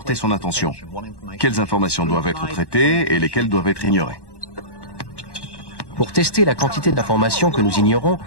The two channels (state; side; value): late; right; 1.1 ms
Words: son attention. Quelles informations doivent être traitées et lesquelles doivent être ignorées. Pour tester la quantité d'informations que nous ignorons,